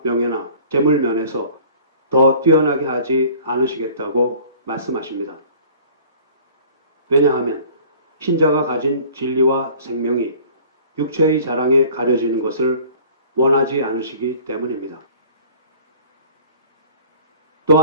명예나 재물 면에서 더 뛰어나게 하지 않으시겠다고 말씀하십니다. 왜냐하면 신자가 가진 진리와 생명이 육체의 자랑에 가려지는 것을 원하지 않으시기 때문입니다.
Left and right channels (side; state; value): both; inverted; correlation -0.48